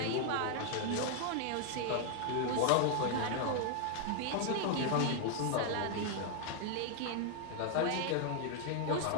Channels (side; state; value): both; different; correlation 0.00